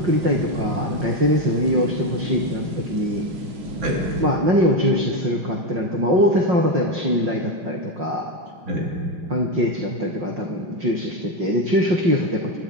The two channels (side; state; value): left; late; 5.6 ms